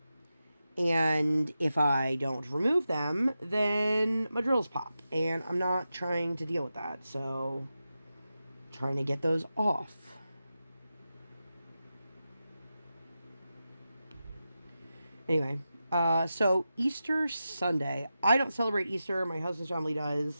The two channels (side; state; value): both; inverted; correlation -0.91